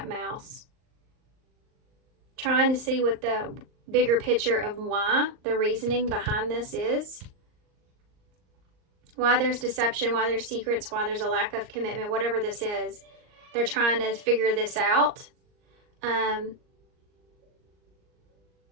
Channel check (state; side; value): late; left; 38 ms